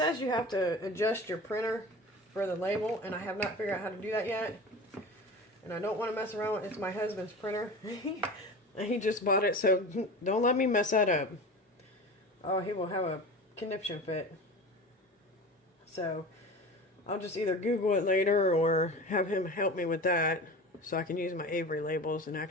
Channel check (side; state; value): both; normal; correlation 0.33